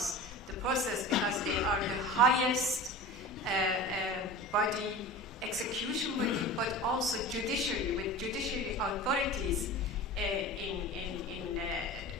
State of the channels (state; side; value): normal; both; correlation 0.34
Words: the process, because they are the highest body, execution body, but also judiciary, with judiciary authorities